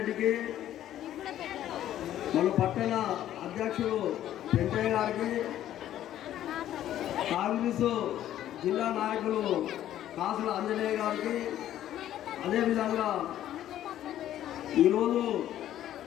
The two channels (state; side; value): quieter; right; 12.1 dB